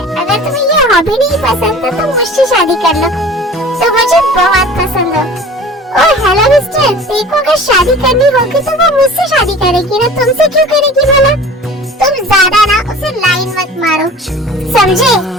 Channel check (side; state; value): both; normal; correlation 0.42